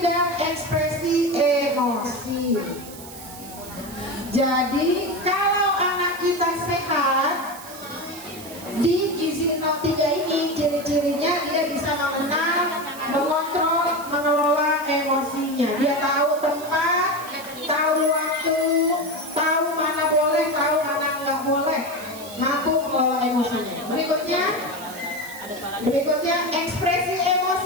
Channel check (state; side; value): noise; right; hiss, 16 dB below the sound